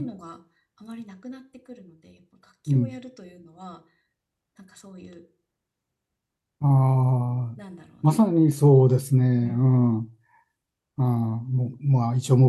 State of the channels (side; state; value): both; identical; correlation 1.00